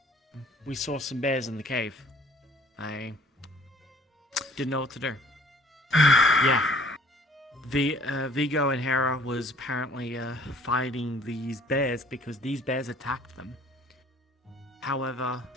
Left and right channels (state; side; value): normal; both; correlation 0.55